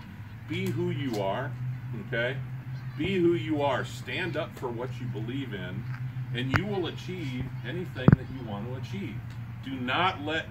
be who you are, okay? Be who you are. Stand up for what you believe in, and you will achieve anything that you want to achieve. Do not let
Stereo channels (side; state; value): both; identical; correlation 1.00